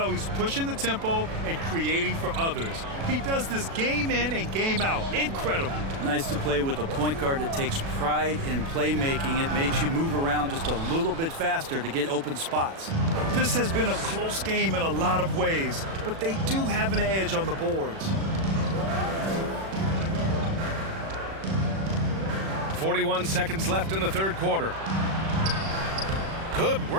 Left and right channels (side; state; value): left; late; 36 ms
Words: he's pushing the tempo and creating for others. He does this game in and game out. Incredible. Nice to play with a point guard that takes pride in playmaking. It makes you move around just a little bit faster to get open spots. This has been a close game in a lot of ways, but they do have an edge on the boards. 41 seconds left in the third quarter. Good